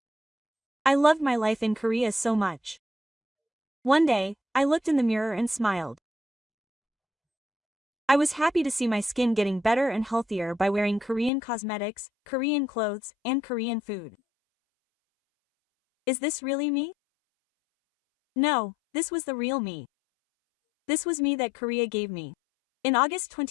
I loved my life in Korea so much. One day, I looked in the mirror and smiled. I was happy to see my skin getting better and healthier by wearing Korean cosmetics, Korean clothes, and Korean food. Is this really me? No, this was the real me. This was me that Korea gave me. In August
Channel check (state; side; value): drops out; right; at 11.3 s